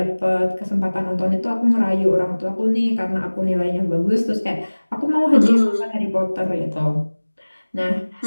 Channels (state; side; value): inverted; both; correlation -1.00